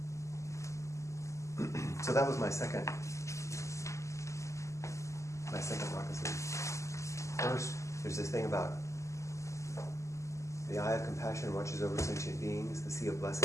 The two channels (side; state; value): right; late; 0.14 ms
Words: So that was my second moccasin. First, there's this thing about the eye of compassion watches over sentient beings. The sea of